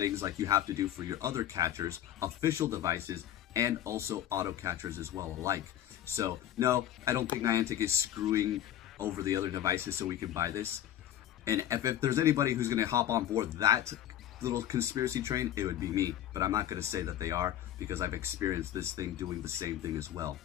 like you have to do for your other catchers, official devices, and also auto catchers as well alike. So no, I don't think Niantic is screwing over the other devices so we can buy this. And if there's anybody who's going to hop on board that little conspiracy train, it would be me. But I'm not going to say that they are because I've experienced this thing doing the same thing as well.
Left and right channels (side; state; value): right; quieter; 11.6 dB